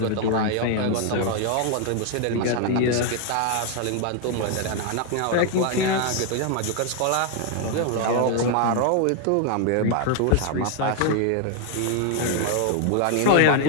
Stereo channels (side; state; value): both; different; correlation 0.00